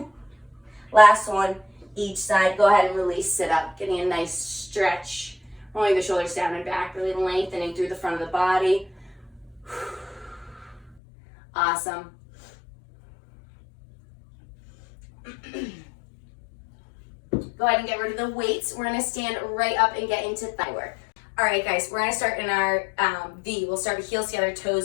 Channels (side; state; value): right; drops out; at 11.0 s